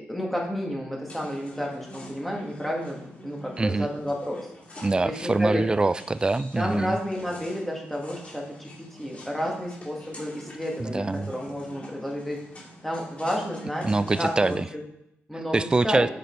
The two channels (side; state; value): both; normal; correlation 0.93